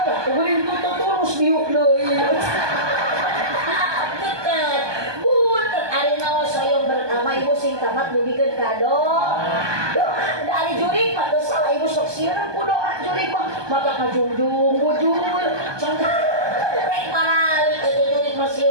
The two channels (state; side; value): late; left; 1.2 ms